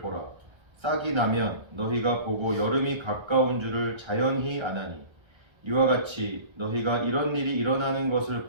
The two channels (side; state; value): left; late; 1.3 ms